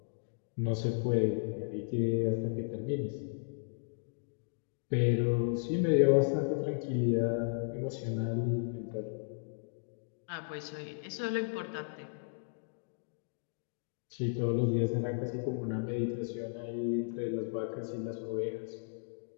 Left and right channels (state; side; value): silent; right; digital silence